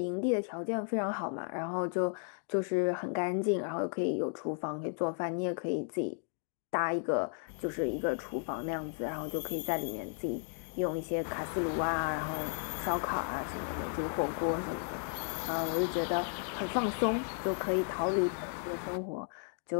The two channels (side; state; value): right; silent; 55 dB below the other